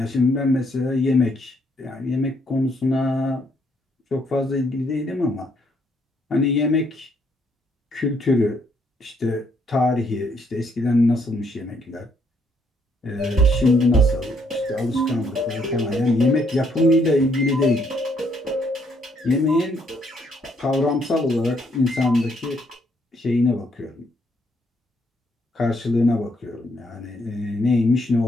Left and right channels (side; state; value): both; normal; correlation 0.71